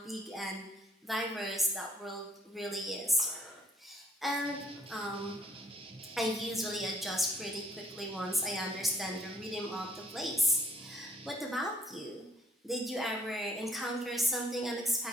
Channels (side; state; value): both; normal; correlation 0.63